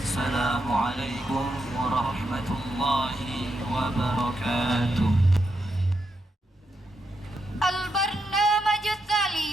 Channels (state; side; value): normal; both; correlation 0.83